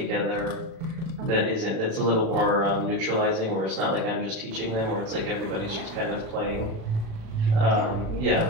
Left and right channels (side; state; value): left; late; 36 ms